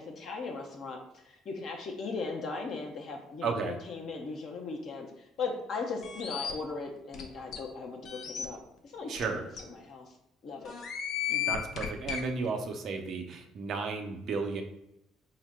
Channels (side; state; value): both; normal; correlation 0.55